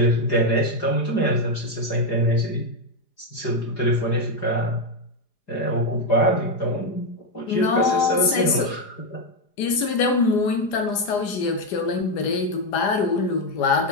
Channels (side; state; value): right; late; 4.9 ms